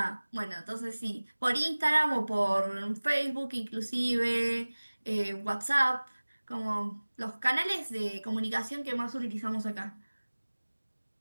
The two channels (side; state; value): both; inverted; correlation -1.00